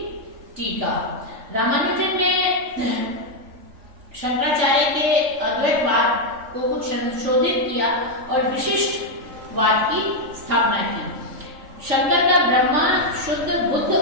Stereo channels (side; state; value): left; late; 3.5 ms